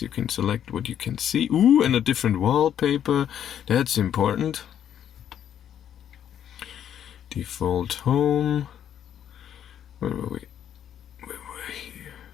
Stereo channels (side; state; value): right; quieter; 9.7 dB